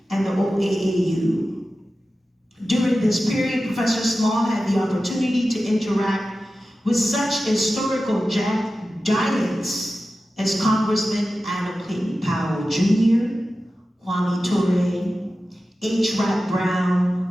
and the OAAU. During this period, Professor Small had the opportunity to interact with such historical giants as Congressman Anna Clayton Powell Jr., Kwame Ture, H. Rat Brown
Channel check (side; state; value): both; normal; correlation 0.94